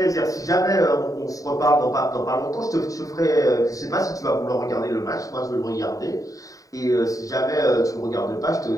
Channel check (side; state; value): right; late; 0.16 ms